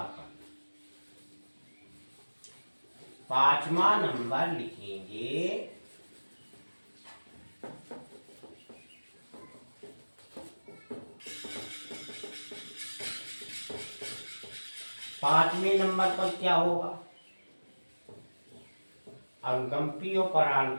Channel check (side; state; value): both; inverted; correlation -1.00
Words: कर। 5वां नंबर लिखेंगे पांचवें नंबर पर क्या होगा? अनुकंपी और